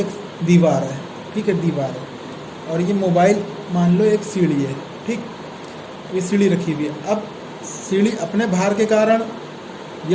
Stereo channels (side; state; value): both; identical; correlation 1.00